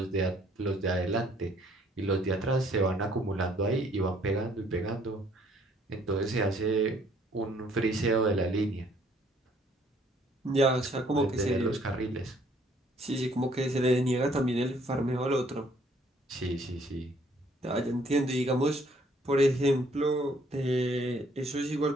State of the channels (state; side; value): normal; both; correlation 0.63